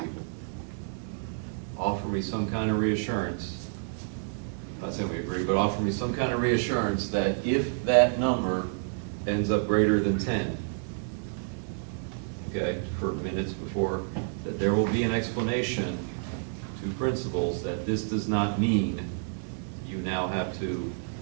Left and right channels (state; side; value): silent; left; 58 dB below the other